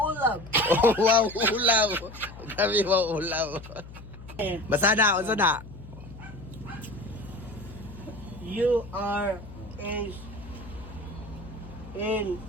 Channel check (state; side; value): noise; left; hum, 15 dB below the sound